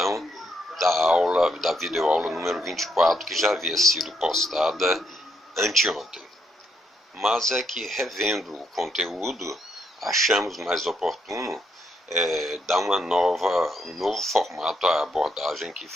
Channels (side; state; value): both; normal; correlation 0.76